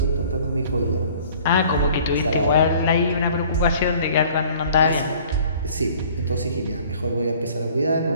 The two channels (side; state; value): both; inverted; correlation -0.52